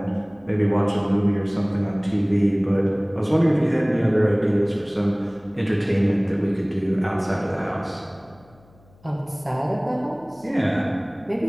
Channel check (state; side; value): noise; left; hum, 28 dB below the sound